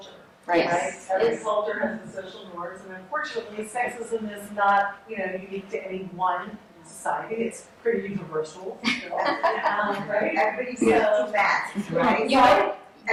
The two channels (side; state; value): both; identical; correlation 1.00